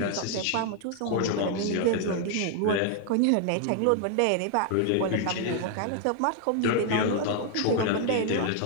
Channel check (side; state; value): both; different; correlation 0.00